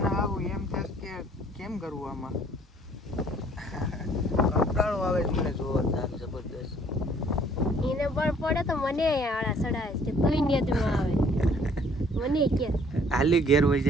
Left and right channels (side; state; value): both; normal; correlation 0.59